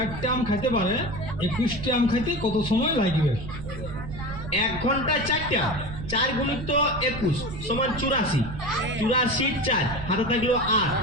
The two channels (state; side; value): noise; right; rumble, 9 dB below the sound